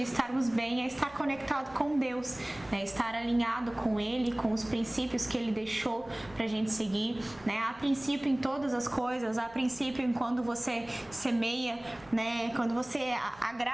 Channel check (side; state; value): right; noise; rumble, 24 dB below the sound